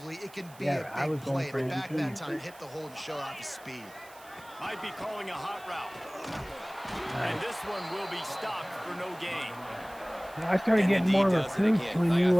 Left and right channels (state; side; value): noise; right; hiss, 22 dB below the sound